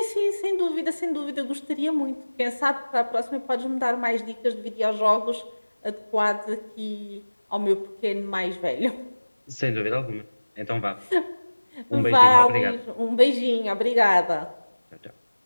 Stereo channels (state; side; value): inverted; both; correlation -1.00